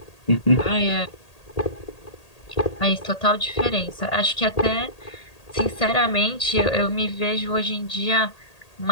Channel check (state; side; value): late; right; 1.8 ms